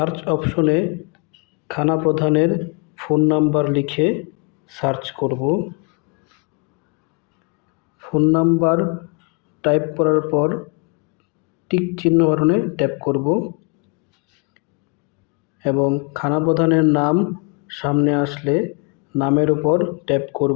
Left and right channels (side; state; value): right; quieter; 32.1 dB